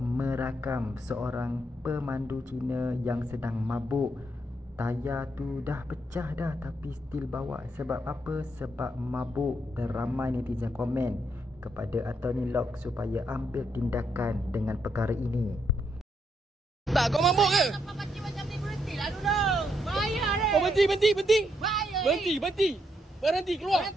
seorang pemandu Cina yang sedang mabuk. Tayar tu dah pecah dah tapi still bawa. Sebab apa? Sebab mabuk. Dan ramai netizen komen kepada Anthony Loke supaya ambil tindakan dengan perkara ini. Tak, kau mabuk ke? Apa macam ni, berhentilah dulu. Bayar ni. Kau berhenti. Bayar Berhenti. Berhenti, keluar.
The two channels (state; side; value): normal; both; correlation 0.77